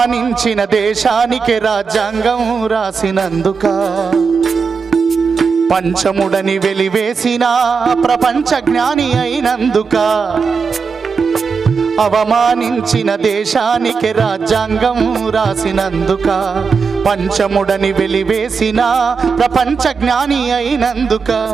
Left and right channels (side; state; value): left; quieter; 5.3 dB